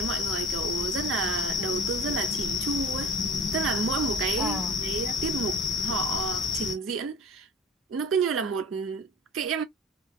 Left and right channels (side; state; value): both; normal; correlation 0.41